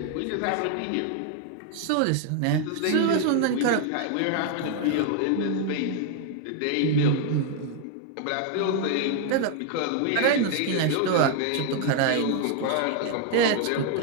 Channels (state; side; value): different; both; correlation 0.00